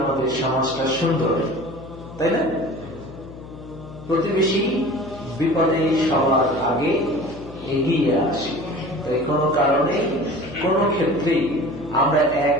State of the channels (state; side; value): noise; left; hum, 15 dB below the sound